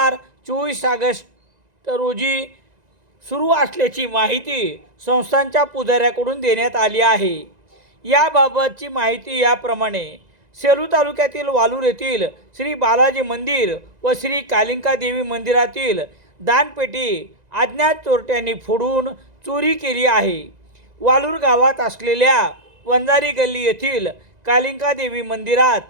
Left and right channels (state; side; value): late; left; 2.0 ms